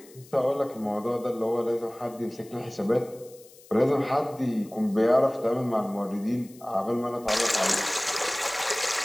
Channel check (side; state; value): left; noise; hiss, 24 dB below the sound